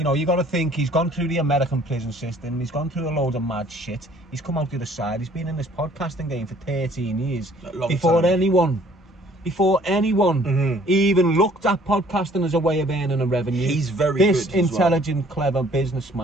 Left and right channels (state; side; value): normal; both; correlation 0.57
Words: know, you got to think, he's gone through the American prison system. He's gone through a load of mad shit. He's come out the other side. He's been in this podcasting game for 13 years. Before anyone even looked at podcasting as a way of earning a revenue. He's very good. This intelligent, clever